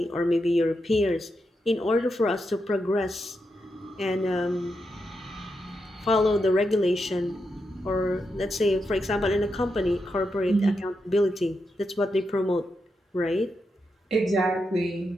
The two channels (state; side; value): normal; both; correlation 0.85